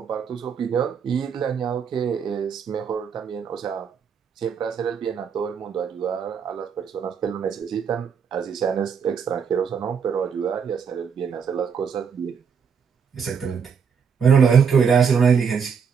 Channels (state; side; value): quieter; left; 6.6 dB